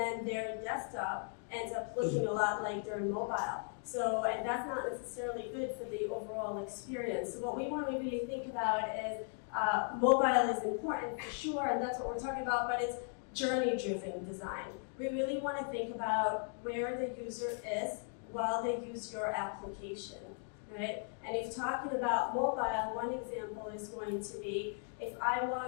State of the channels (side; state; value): right; silent; 53 dB below the other